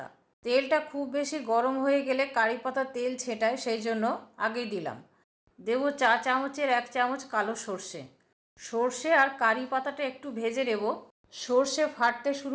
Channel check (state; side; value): identical; both; correlation 1.00